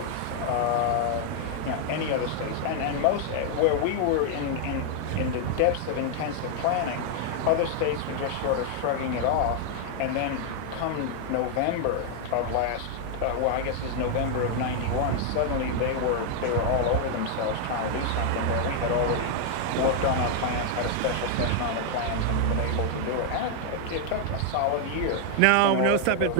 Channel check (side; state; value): both; different; correlation 0.00